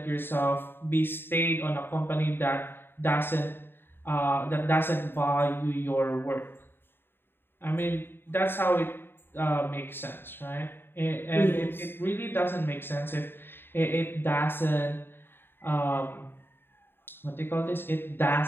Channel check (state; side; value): late; right; 0.10 ms